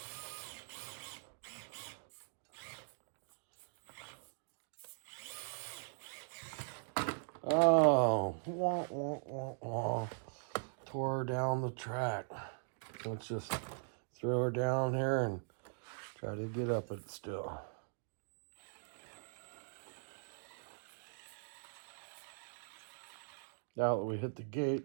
Oh, wah, wah, wah, wah. Tore her down the track. Let's just throw her down here and try to get up it still. Now that we hit the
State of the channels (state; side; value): silent; left; digital silence